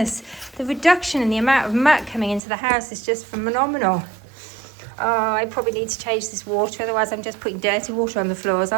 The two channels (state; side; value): drops out; left; at 2.4 s